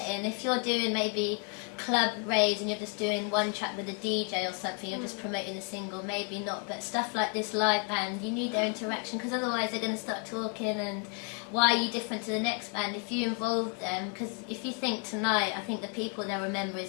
If you're doing maybe club raves and you're just doing one track with a DJ or something, you're just promoting a single, maybe not. But stuff like this live band, you need their interaction, because otherwise they're going to start talking, and why are you different to the next band? If you involve them, because if you think tonight, I think the people they'll remember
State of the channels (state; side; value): quieter; right; 37.6 dB